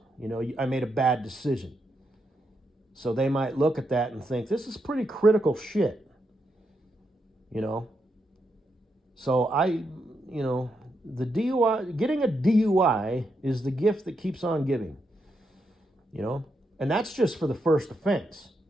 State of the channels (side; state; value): both; normal; correlation 0.82